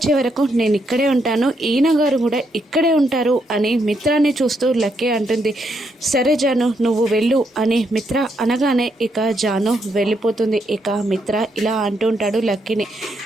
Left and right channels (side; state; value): both; normal; correlation 0.77